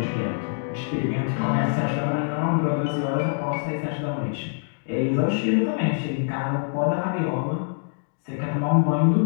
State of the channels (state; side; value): silent; right; 62 dB below the other